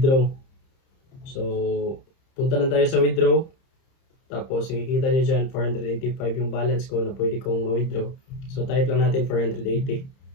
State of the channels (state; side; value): late; right; 30 ms